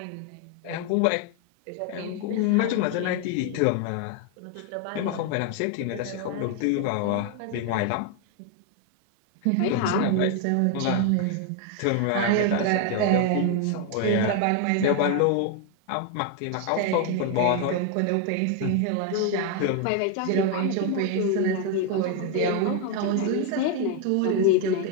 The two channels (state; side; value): different; both; correlation 0.01